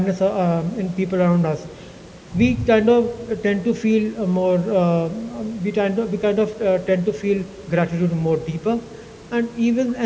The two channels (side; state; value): both; identical; correlation 1.00